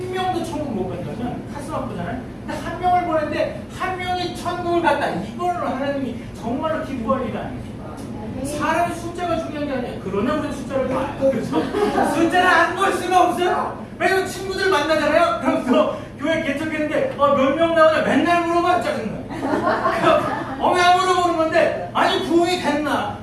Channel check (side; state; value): both; identical; correlation 1.00